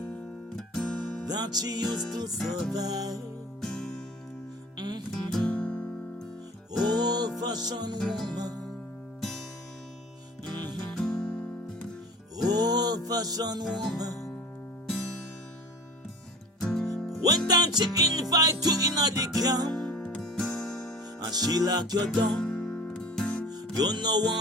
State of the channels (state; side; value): normal; both; correlation 0.41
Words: that she used to survive. Old-fashioned woman. Old-fashioned woman. One time she invite you in the camp and she lock you down. You know